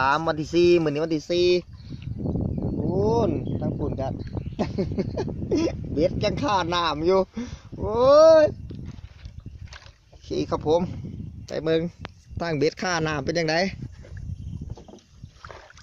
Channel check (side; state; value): both; identical; correlation 1.00